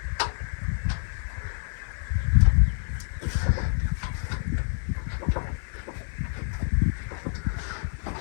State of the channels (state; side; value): silent; right; 60 dB below the other